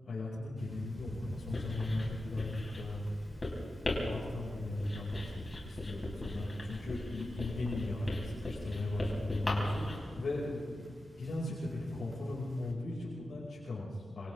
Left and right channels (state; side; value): normal; both; correlation 0.92